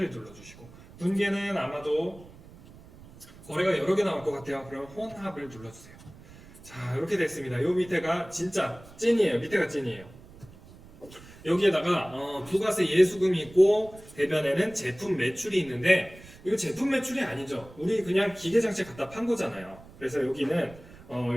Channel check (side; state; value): right; noise; rumble, 20 dB below the sound